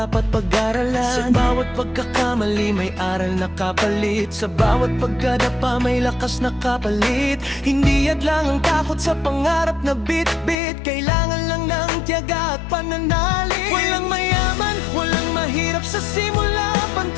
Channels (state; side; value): drops out; right; at 10.6 s